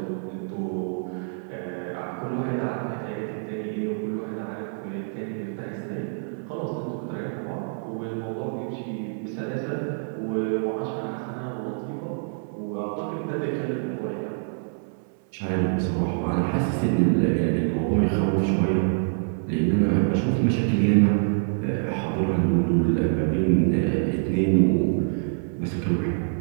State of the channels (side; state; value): left; silent; 61 dB below the other